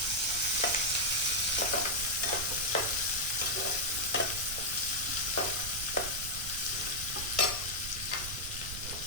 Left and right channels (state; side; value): noise; right; rumble, 10 dB below the sound